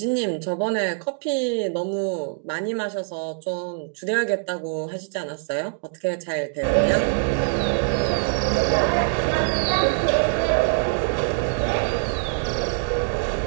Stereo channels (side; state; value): left; silent; digital silence